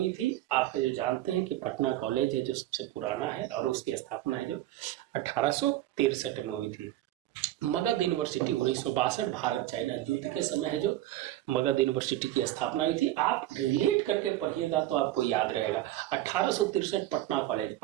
थी। आप है जो जानते हैं कि पटना कॉलेज है जो सबसे पुराना है और उसकी स्थापना है जो 1863 में हुई थी। मगध यूनिवर्सिटी 1962, भारत चाइना युद्ध के समय है जो मगध यूनिवर्सिटी की स्थापना हुई थी। आप रिलेट करके पढ़िएगा तो आपको याद रहेगा। 1863 पटना कॉलेज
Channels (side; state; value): left; quieter; 14.8 dB